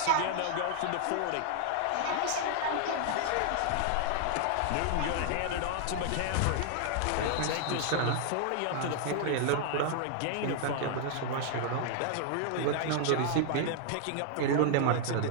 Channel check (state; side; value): different; both; correlation 0.00